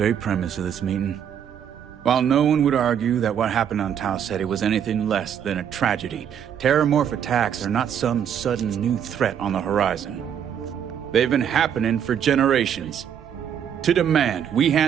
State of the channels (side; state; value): left; quieter; 8.8 dB